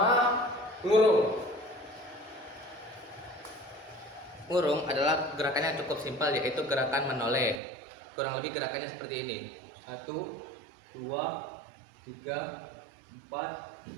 ngurung. Ngurung adalah gerakan yang cukup simpel, yaitu gerakan menoleh. Kurang lebih gerakannya seperti ini. 1, 2, 3,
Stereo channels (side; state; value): left; drops out; at 7.6 s